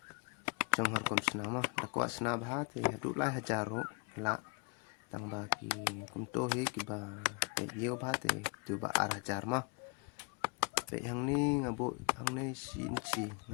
trong har kom sna mah dakwa sna bha te hadu lai hajaru la tang bagi kum to he kiba te yo bha te tu ba ar hajar mah pe hang ni ngabu hang ne sin chi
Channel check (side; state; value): right; quieter; 33.6 dB